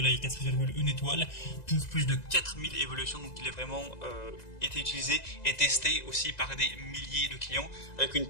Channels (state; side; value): late; right; 1.9 ms